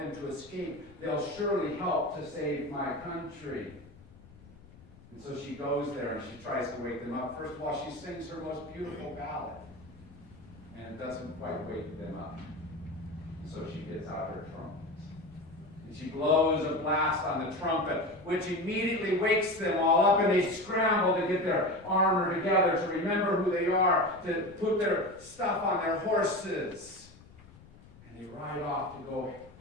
to escape, they'll surely help to save my country." And so she goes there and she tries to wake them up. First of all, she sings her most beautiful ballad, and it doesn't quite wake them up. And so she gets out her trumpet. And she blows a blast on the trumpet, which immediately wakes them all up, and they scramble to get their armor together, to remember who they are, to put their stuff on their horses. And they ride off to go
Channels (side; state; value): left; noise; rumble, 22 dB below the sound